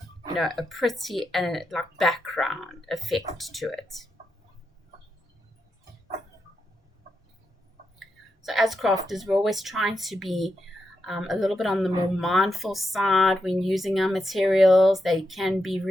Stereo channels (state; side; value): normal; both; correlation 0.85